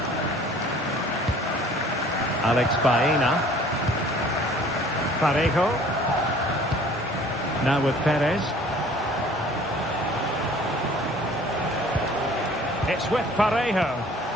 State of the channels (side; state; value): both; normal; correlation 0.51